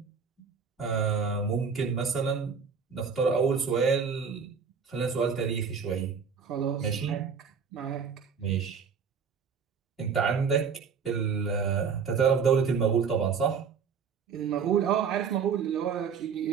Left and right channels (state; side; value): quieter; left; 6.2 dB